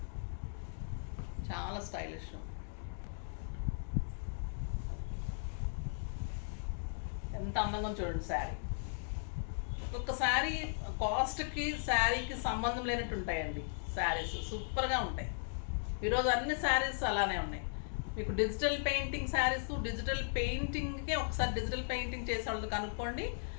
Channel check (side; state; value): right; silent; digital silence